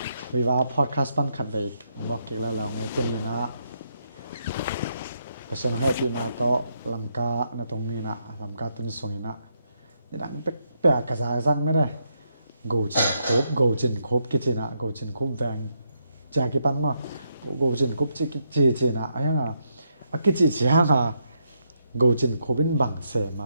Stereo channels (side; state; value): both; inverted; correlation -0.79